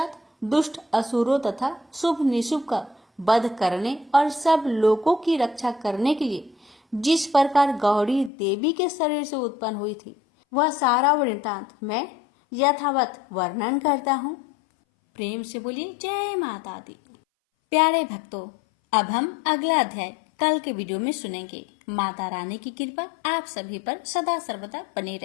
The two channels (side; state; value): right; drops out; at 8.3 s